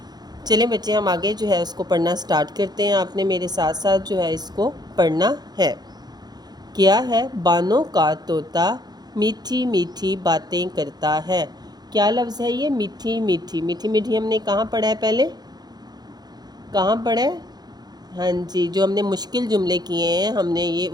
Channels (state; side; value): late; left; 0.19 ms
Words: چلیں بچے، ہم آگے اس کو پڑھنا سٹارٹ کرتے ہیں۔ آپ نے میرے ساتھ ساتھ اس کو پڑھنا ہے۔ کیا ہے بانوں کا طوطا میٹھی میٹھی باتیں کرتا ہے۔ کیا لفظ ہے یہ؟ میٹھی میٹھی۔ میٹھی میٹھی ہم نے کہاں پڑھا ہے؟ پہلے کہاں پڑھا ہے؟ ہاں جی، جو ہم نے مشکل جملے کیے ہیں، ہم نے